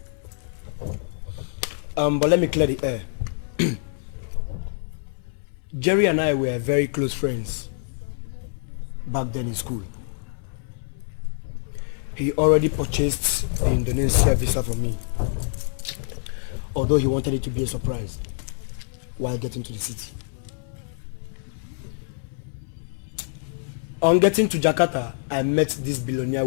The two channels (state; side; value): silent; right; 59 dB below the other